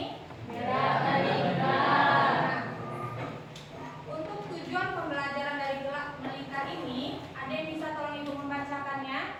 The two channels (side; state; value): both; identical; correlation 1.00